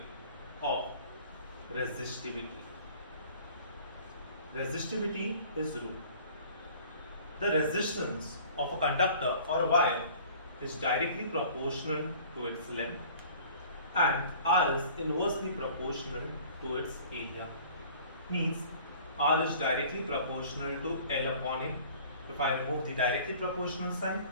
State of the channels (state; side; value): inverted; both; correlation -0.49